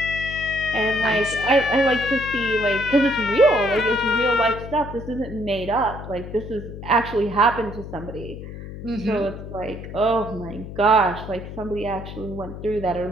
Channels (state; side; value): noise; left; hum, 11 dB below the sound